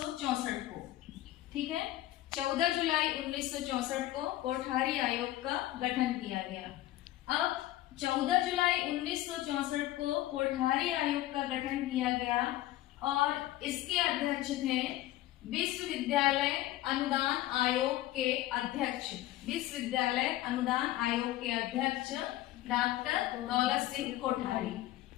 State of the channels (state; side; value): quieter; right; 15.3 dB